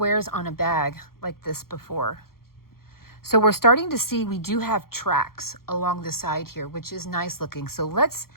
on a bag like this before. So we're starting to see we do have tracks along the side here, which is nice looking. So let's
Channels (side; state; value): right; late; 0.93 ms